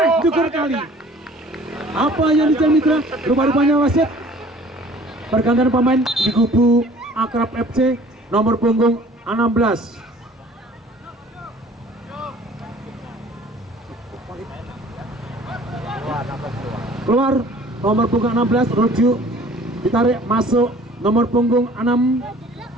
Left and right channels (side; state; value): both; normal; correlation 0.51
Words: jungkir kali. Apa yang dijadi mitra? Rupa-rupanya wasit pergantian pemain di kubu Akrab FC nomor punggung 16. Keluar nomor punggung 16, rujuk ditarik masuk nomor punggung 6